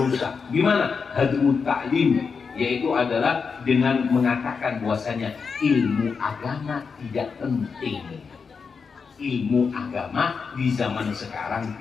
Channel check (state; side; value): quieter; right; 5.5 dB